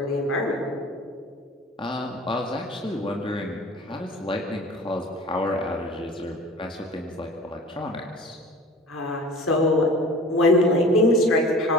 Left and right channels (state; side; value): normal; both; correlation 0.42